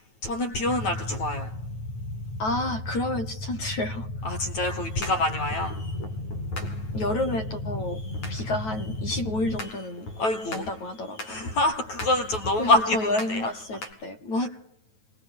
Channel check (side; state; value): right; late; 9.2 ms